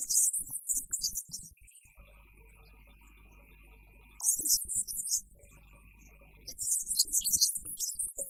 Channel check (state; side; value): identical; both; correlation 1.00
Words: ये करने वाला पहला सूबा होगा। ठीक इसी तरीके नाल एक होर बहुत बड़ा अचीवमेंट साडे